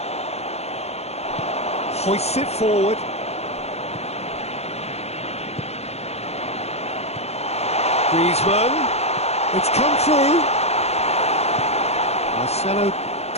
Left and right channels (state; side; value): late; right; 0.31 ms